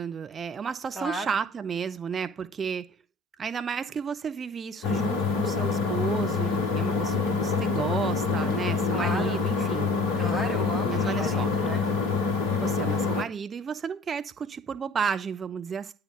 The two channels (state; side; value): normal; both; correlation 0.48